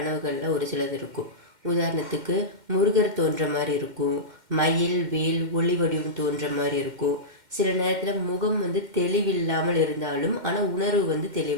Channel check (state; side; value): late; left; 2.1 ms